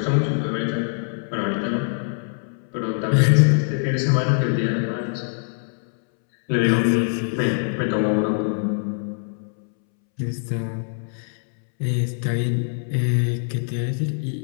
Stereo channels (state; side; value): silent; right; 63 dB below the other